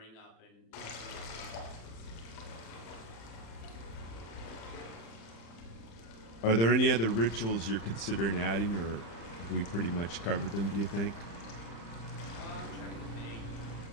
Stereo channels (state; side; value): late; right; 35 ms